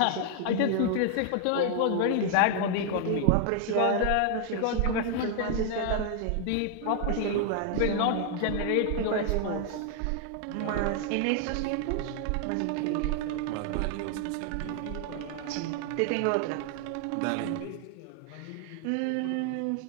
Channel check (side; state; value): both; different; correlation 0.00